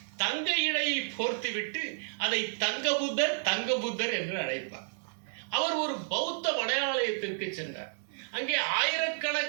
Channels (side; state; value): left; silent; 57 dB below the other